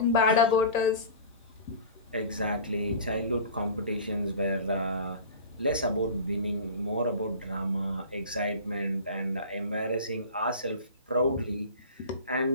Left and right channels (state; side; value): inverted; both; correlation -0.37